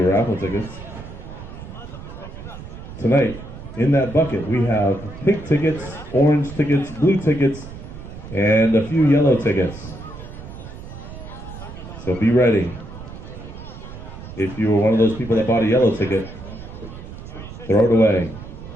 raffle tickets. Tonight, in that bucket, we have pink tickets, orange tickets, blue tickets, and a few yellow tickets. So be ready. If you were one of those people that bought a yellow ticket, throw it away.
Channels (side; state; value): right; noise; rumble, 13 dB below the sound